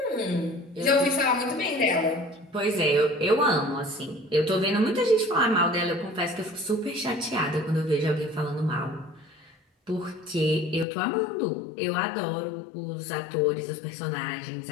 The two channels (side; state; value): right; drops out; at 10.9 s